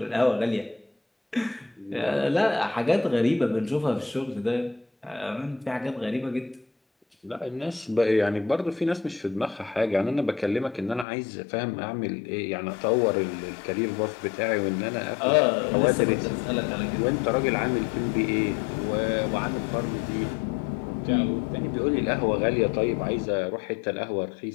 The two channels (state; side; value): drops out; right; at 11.1 s